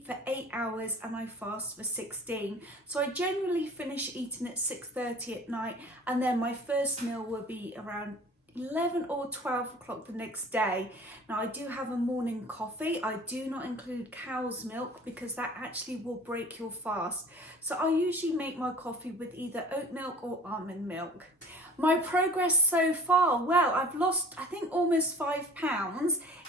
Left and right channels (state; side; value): normal; both; correlation 0.43